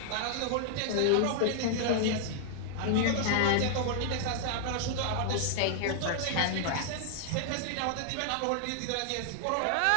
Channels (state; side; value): different; both; correlation -0.01